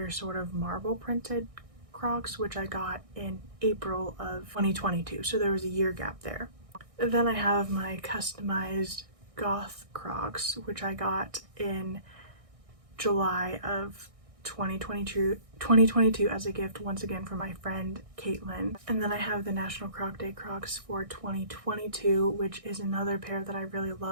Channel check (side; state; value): left; late; 1.6 ms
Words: sort of marble printed Crocs, which I got in April of 2022, so there was a year gap there. Then I have my customized goth Crocs, which I got in July of 2022 as a gift once again from my friend Caitlin. And then I have the National Croc Day Crocs for 2022, which is another pair that I really